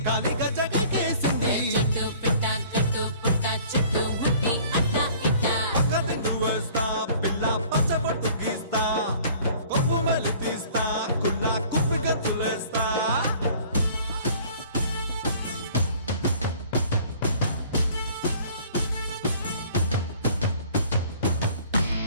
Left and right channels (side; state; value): both; inverted; correlation -0.51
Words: గాలిగా జగకేసింది చెట్టు పిట్ట కట్టు పుట్ట చెట్టు ముట్టి అట్ట ఇట్ట కథను వేస్తా పిల్ల పచ్చబొట్టు గీస్తా కొమ్ము మెలు తీస్తా కుల్ల కొమ్మిగా తులేస్తా